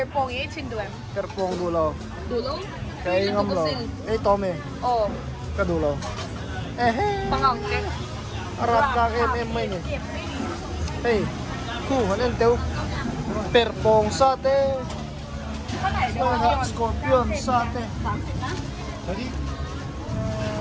18 duem. Perpong dulo. Dulo? Kay ngam lo. Tome. Oh, Ka dulo. pangang ke. Harap ka may ni. Hey. Ku hanen teu. Perpong sate. Scorpion sate. Tadi.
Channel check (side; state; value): both; identical; correlation 1.00